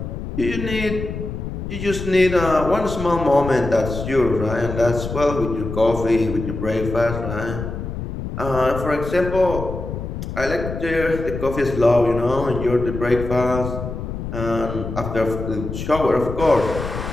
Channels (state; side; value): noise; left; rumble, 6 dB below the sound